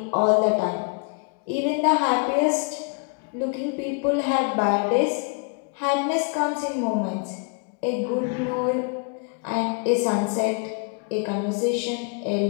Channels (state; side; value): quieter; right; 37.1 dB